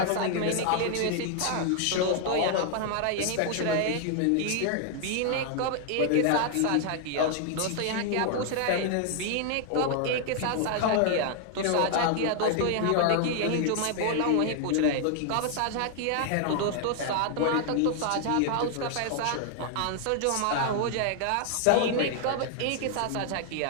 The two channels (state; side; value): different; both; correlation 0.00